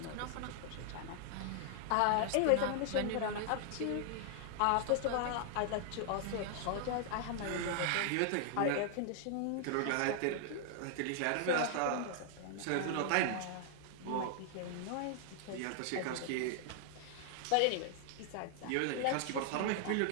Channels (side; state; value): both; different; correlation 0.00